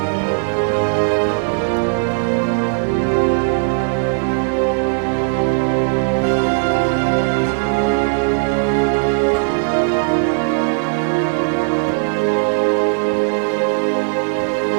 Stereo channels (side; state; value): left; silent; digital silence